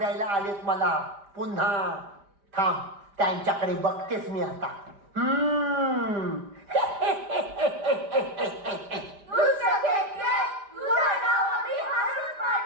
आलेत मला पुन्हा. थांब त्यांच्याकडे बघतेस मी आता.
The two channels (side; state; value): left; late; 5.0 ms